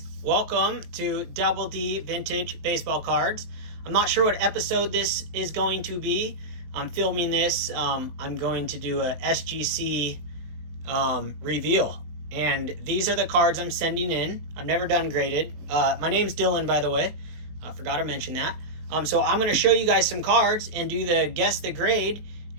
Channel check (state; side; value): late; left; 19 ms